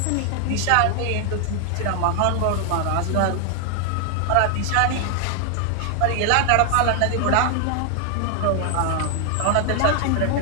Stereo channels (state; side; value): different; both; correlation 0.00